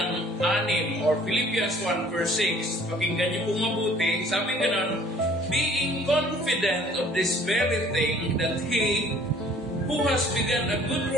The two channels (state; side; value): normal; both; correlation 0.54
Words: 6, or Philippians 1, verse 6. Pakinggan niyo po mabuti. Sabi ganon, being confident of this very thing, that He who has begun a good